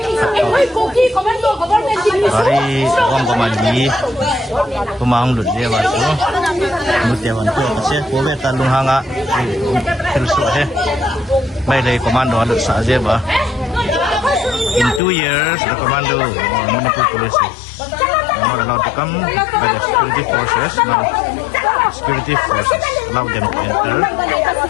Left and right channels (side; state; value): right; drops out; at 15.0 s